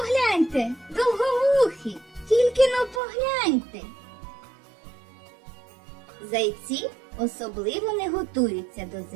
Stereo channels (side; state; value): left; drops out; at 3.0 s